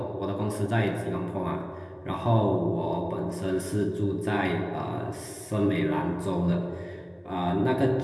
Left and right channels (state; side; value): identical; both; correlation 1.00